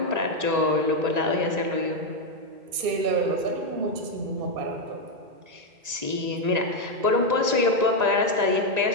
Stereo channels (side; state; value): left; late; 1.9 ms